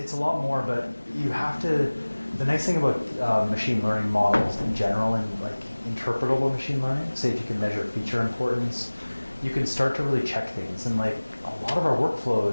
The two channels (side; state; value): both; inverted; correlation -1.00